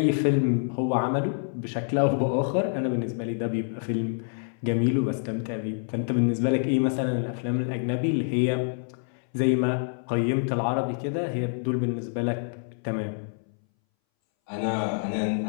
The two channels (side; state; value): right; silent; 60 dB below the other